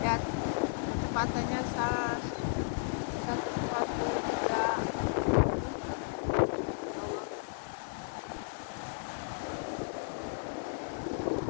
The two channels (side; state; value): right; silent; digital silence